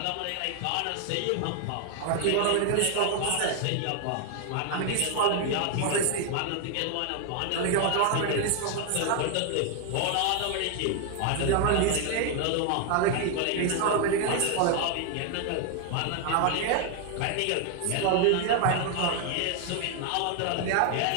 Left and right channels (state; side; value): different; both; correlation 0.00